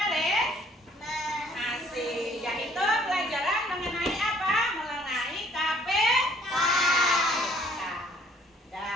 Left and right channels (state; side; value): normal; both; correlation 0.60